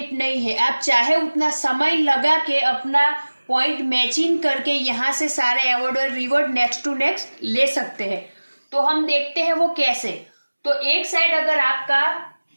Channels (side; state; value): both; inverted; correlation -1.00